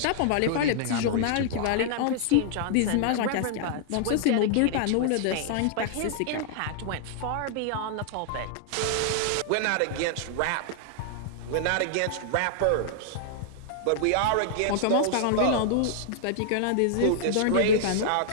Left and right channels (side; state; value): both; different; correlation -0.01